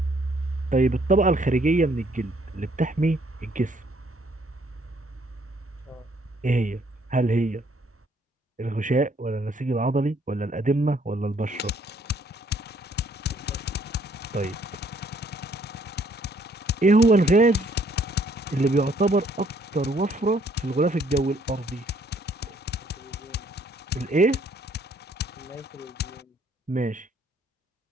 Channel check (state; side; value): normal; both; correlation 0.65